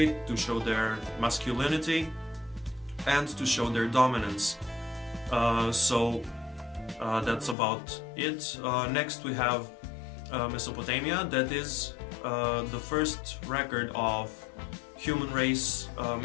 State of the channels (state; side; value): drops out; right; at 7.6 s